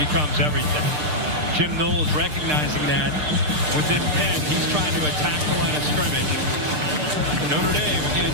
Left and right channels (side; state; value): left; late; 6.6 ms